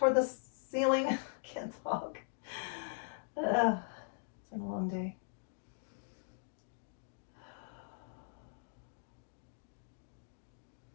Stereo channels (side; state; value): right; silent; digital silence